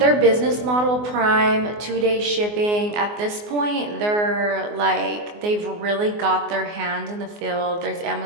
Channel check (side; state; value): left; late; 24 ms